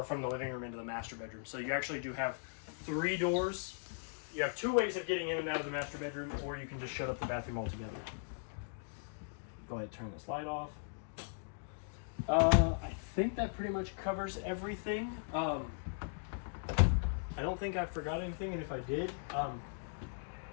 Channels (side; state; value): right; silent; digital silence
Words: from the living room into the master bedroom. So you actually do have 3 doors. You have 2 ways of getting in and out of the master bedroom, or you can just shut up the bathroom altogether. Go ahead and turn this light off. I think that pretty much covers everything. I don't think I forgot anything, and if I did,